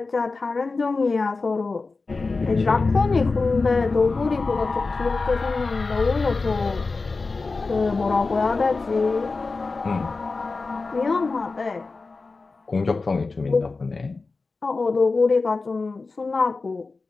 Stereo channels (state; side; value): quieter; right; 3.9 dB